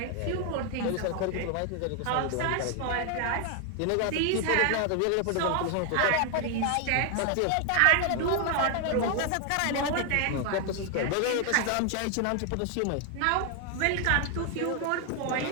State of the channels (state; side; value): different; both; correlation 0.00